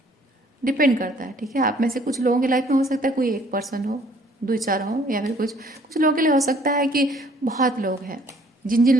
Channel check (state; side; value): normal; both; correlation 0.59